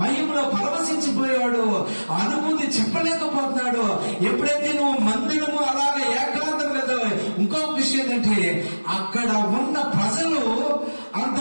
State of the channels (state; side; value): inverted; both; correlation -1.00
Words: మహిమలో పరవశించిపోయాడు. ఆ అనుభూతి చెప్పలేకపోతున్నాడు. ఎప్పుడైతే నువ్వు మందిరము అలాగే ఏకాంతం వెళ్తావు. ఇంకొక విషయం ఏంటంటే అక్కడ ఉన్న ప్రజలు